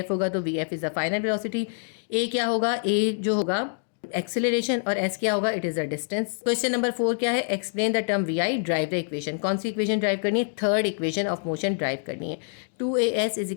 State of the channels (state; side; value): silent; right; digital silence